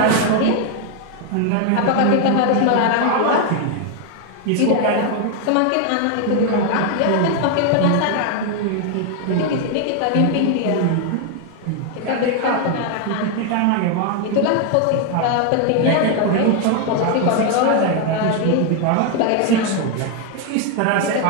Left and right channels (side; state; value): both; different; correlation 0.01